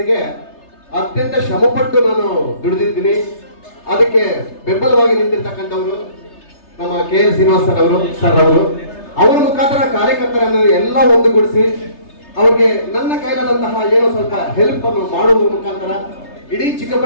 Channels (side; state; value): right; late; 3.3 ms